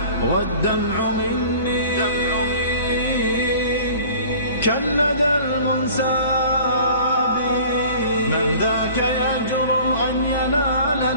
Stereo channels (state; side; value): inverted; both; correlation -0.46